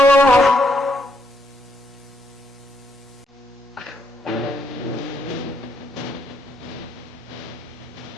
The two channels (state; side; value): normal; both; correlation 0.76